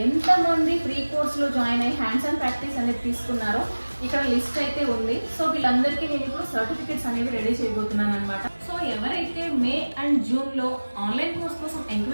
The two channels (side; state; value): both; inverted; correlation -1.00